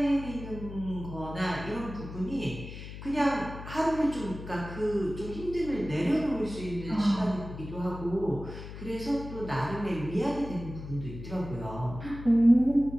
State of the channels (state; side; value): noise; left; hum, 11 dB below the sound